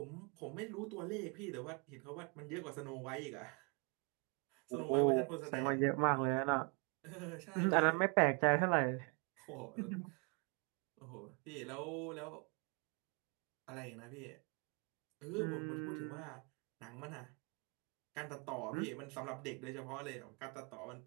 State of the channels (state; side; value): quieter; left; 33.1 dB